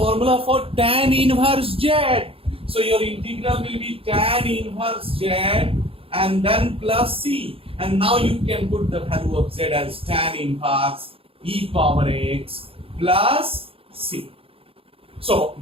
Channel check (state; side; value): late; left; 0.27 ms